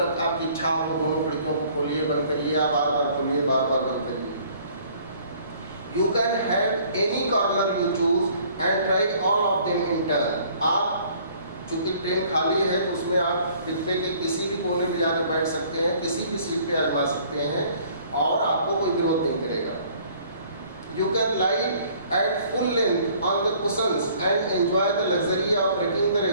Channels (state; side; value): inverted; both; correlation -0.57